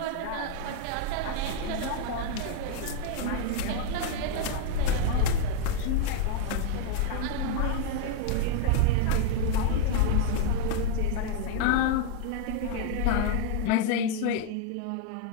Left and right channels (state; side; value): different; both; correlation 0.00